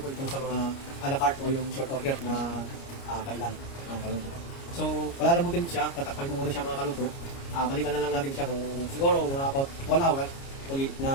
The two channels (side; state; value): right; late; 29 ms